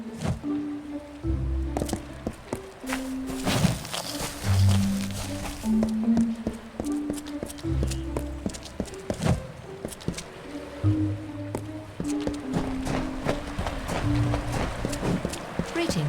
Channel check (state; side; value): identical; both; correlation 1.00